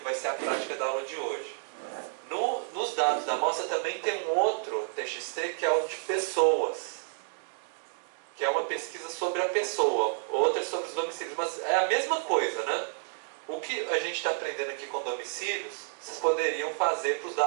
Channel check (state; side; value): silent; left; digital silence